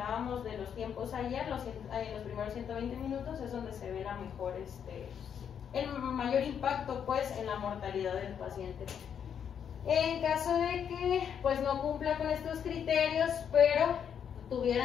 de los tiempos ayer, los primeros 120 minutos es donde se ve la mejor, el mayor impacto pues en la mortalidad del paciente. En caso de que pues no cumpla con estos criterios, pero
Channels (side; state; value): right; quieter; 8.1 dB